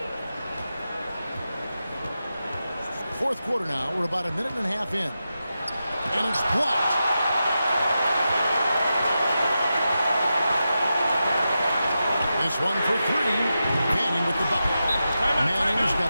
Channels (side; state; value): both; inverted; correlation -0.90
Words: Fourth quarter now. We're about a minute and a half in. And it's blocked. This one for 3. Manning with the bucket. Manning's